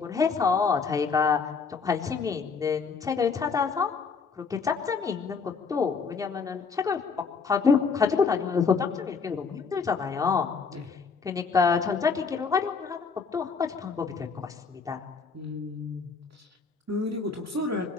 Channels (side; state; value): right; quieter; 5.3 dB